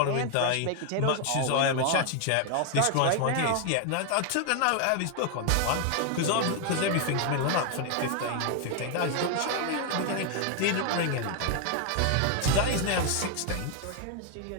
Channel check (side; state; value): both; different; correlation 0.01